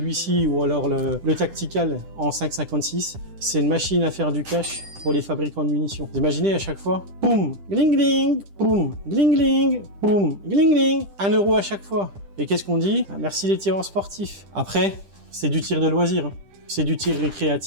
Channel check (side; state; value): left; late; 10 ms